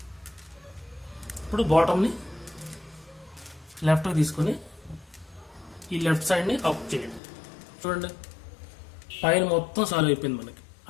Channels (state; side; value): drops out; right; at 7.2 s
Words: ఇప్పుడు బాటమ్ని లెఫ్ట్కి తీసుకొని ఈ లెఫ్ట్ సైడ్ని అప్ చేయండి. చూడండి, పైన మొత్తం సాల్వ్ అయిపోయింది మనకి.